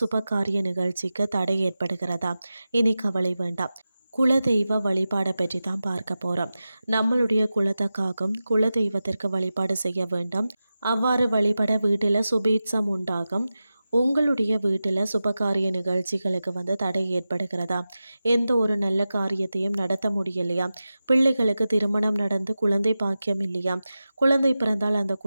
நிகழ்ச்சிக்கு தடை ஏற்படுகிறதா? இனி கவலை வேண்டாம். குலதெய்வ வழிபாடை பற்றி தான் பார்க்க போகிறோம். நம்மளுடைய குலத்துக்காகவும் குலதெய்வத்திற்கு வழிபாடு செய்ய வேண்டும். அவ்வாறு வழிபட வீட்டில் சுபீட்சம் உண்டாகும். உங்களுடைய வீட்டில் சுபகாரிய நிகழ்ச்சிகளுக்கு தடை ஏற்படுகிறதா? எந்த ஒரு நல்ல காரியத்தையும் நடத்த முடியலையா? பிள்ளைகளுக்கு திருமணம் நடந்து குழந்தை பாக்கியம் இல்லையா? குழந்தை பிறந்தால் அந்த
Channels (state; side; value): inverted; both; correlation -0.94